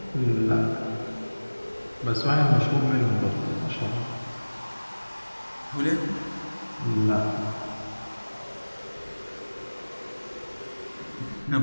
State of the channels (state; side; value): inverted; both; correlation -1.00